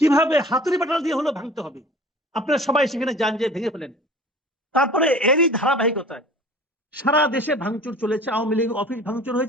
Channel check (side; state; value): both; normal; correlation 0.44